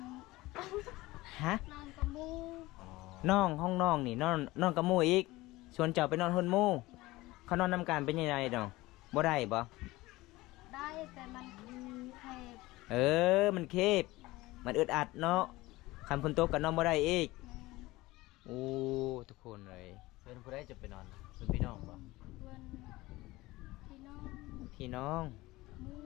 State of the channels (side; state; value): right; quieter; 19.6 dB